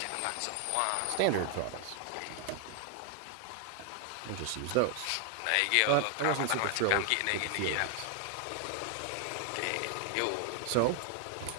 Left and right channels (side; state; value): both; different; correlation 0.00